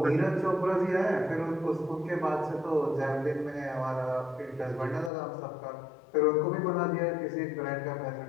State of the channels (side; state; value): right; drops out; at 5.1 s